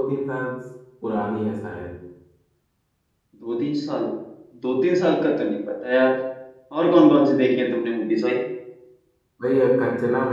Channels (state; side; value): identical; both; correlation 1.00